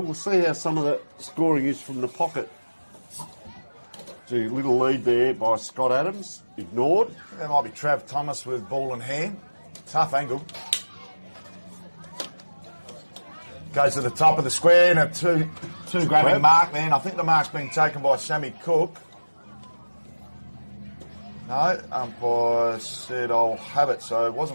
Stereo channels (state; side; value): inverted; both; correlation -1.00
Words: we'll see how some of the scoring is from the pocket. Gee, little lead there by Scott Adams. Ignored. That might be Trav Thomas with ball in hand. Tough angle. Goes to the top of the square and a two grabbing mark there. And I think the mark's been taken by Sammy Cook. No, umpire said I'll have it, so it